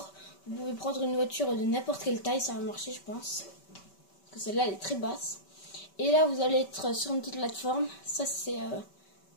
vous pouvez prendre une voiture de n'importe quelle taille, ça va marcher je pense. Parce que celle-là elle est très basse. Et là vous allez être sur une petite plateforme, ça c'est...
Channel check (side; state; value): right; late; 5.2 ms